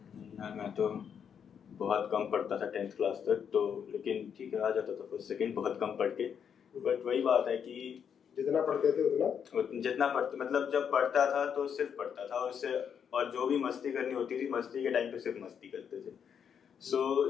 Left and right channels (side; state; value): right; quieter; 7.7 dB